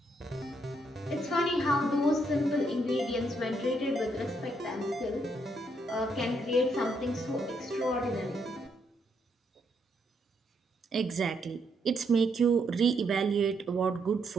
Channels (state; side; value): normal; both; correlation 0.75